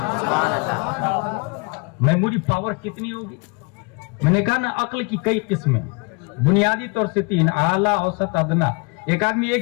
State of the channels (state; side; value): quieter; right; 31.0 dB